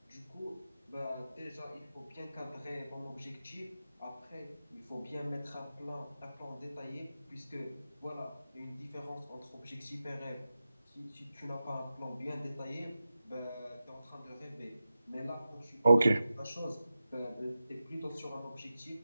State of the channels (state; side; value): inverted; both; correlation -0.91